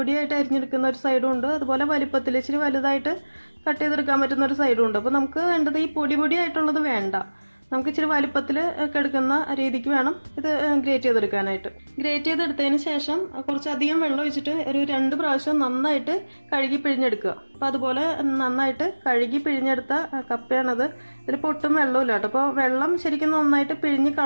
അരിഞ്ഞെടുക്കുന്ന ഒരു സൈഡും ഉണ്ട്, അതുപോലെ വലിപ്പത്തിൽ ഇച്ചിരി വലുതായിട്ട് കട്ട് ചെയ്തെടുക്കാൻ പറ്റുന്ന ഒരു സൈഡും ഉണ്ട്. അപ്പൊ നമുക്ക് വേണ്ടത് ഈ പൊടിയായിട്ടുള്ളത് വേണ്ട, നമുക്ക് ഇച്ചിരി വലിപ്പത്തിൽ ഒക്കെ എടുക്കുന്ന രീതിക്ക് വേണം ഇത് ഗ്രേറ്റ് ചെയ്തെടുക്കാനായിട്ട്. ഗ്രേറ്റ് ചെയ്തെടുത്തതിന് ശേഷം കുറച്ചധികം വെള്ളം ഒഴിച്ചിട്ട് ഒരു 2 പ്രാവശ്യം നന്നായിട്ട് കഴുകി പിഴിഞ്ഞെടുക്കുക. അപ്പൊ അതുപോലെ നന്നായിട്ട് കഴുകി പിഴിഞ്ഞെടുത്ത കപ്പയാണത്. ഇതിൽ പൊട്ടും വെള്ളമില്ല കേട്ടോ. അപ്പോൾ വെള്ളം ശരിക്കും നന്നായിട്ട് പിഴിഞ്ഞ്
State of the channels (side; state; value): both; inverted; correlation -1.00